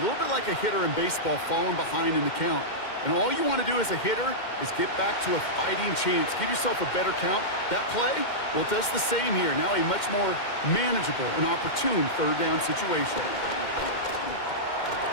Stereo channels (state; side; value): late; right; 2.1 ms